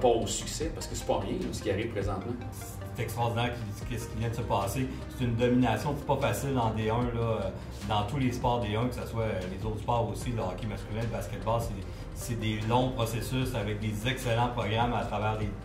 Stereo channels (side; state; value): both; identical; correlation 1.00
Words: au succès? Parce que c'est pas rien là, ce qui arrive présentement. C'est extraordinaire ce qui vient de se passer. C'est une domination, c'est pas facile en D1, là, dans tous les sports D1, que ce soit les autres sports aussi, le hockey masculin, le basketball, c'est des longs processus avec des excellents programmes à travers